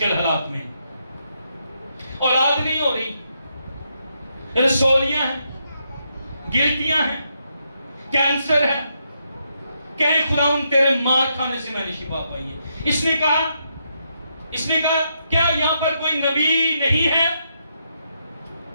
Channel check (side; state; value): both; inverted; correlation -0.80